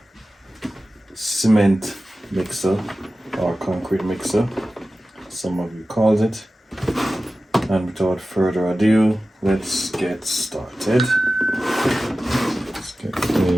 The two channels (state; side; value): normal; both; correlation 0.95